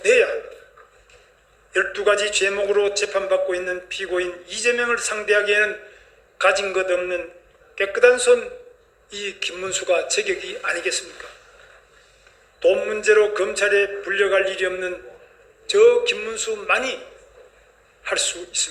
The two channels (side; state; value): both; identical; correlation 1.00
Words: 합니다. 12가지 죄목으로 재판받고 있는 피고인 이재명을 상대하기에는 가진 것 없는 깨끗한 손 이 김문수가 제격이 아니겠습니까? 돈 문제로 검찰에 불려갈 일이 없는 저 김문수만이 할 수